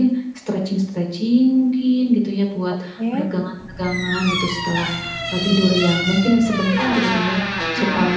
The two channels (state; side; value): identical; both; correlation 1.00